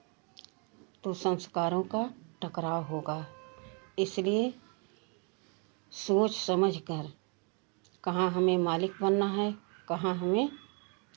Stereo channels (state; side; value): quieter; left; 35.0 dB